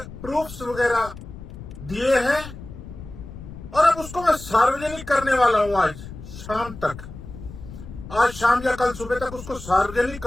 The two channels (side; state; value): left; noise; rumble, 13 dB below the sound